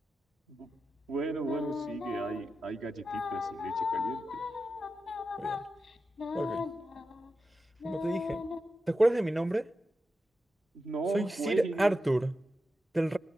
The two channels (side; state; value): both; normal; correlation 0.90